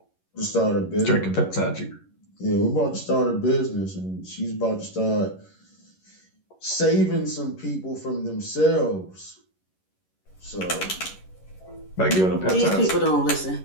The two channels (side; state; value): right; late; 11 ms